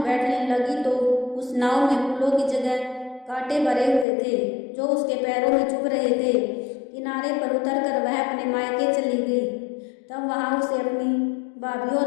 बैठने लगी तो उस नाव में फूलों की जगह कांटे भरे हुए थे जो उसके पैरों में चुभ रहे थे। किनारे पर उतरकर वह अपने मायके चली गई। तब वहां उसे अपनी भाभी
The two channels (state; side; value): drops out; right; at 4.0 s